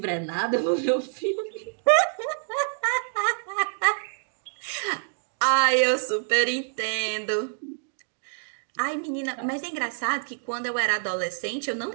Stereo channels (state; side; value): silent; left; digital silence